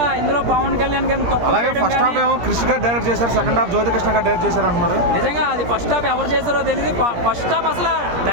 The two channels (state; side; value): late; left; 17 ms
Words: ఇందులో పవన్ కళ్యాణ్ గారిని తప్పు చేయడం కానీ. క్రిష్ గారు డైరెక్ట్ చేశారు, సెకండ్ హాఫ్ జ్యోతికృష్ణ గారు డైరెక్ట్ చేశారు అంటున్నారు. నిజంగా అది ఫస్ట్ హాఫ్ ఎవరు చేశారో తెలియదు. ఫస్ట్ హాఫ్ అసలు